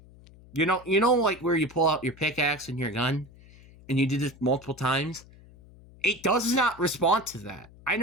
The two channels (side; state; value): left; noise; hum, 23 dB below the sound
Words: where you pull out your pickaxe and your gun, and you did this multiple times, it does not respond to that. I